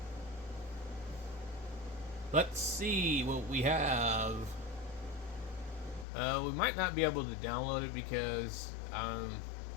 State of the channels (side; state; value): right; drops out; at 6.1 s